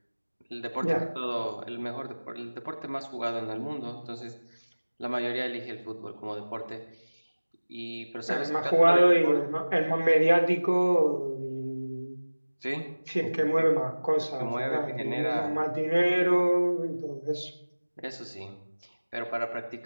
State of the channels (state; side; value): inverted; both; correlation -1.00